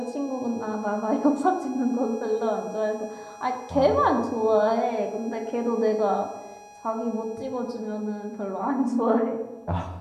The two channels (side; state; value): both; identical; correlation 1.00